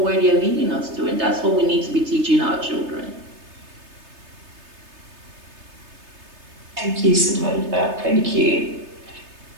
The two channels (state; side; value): late; left; 3.3 ms